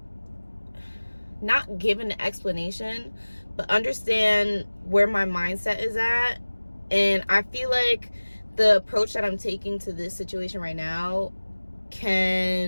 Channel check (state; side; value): inverted; both; correlation -1.00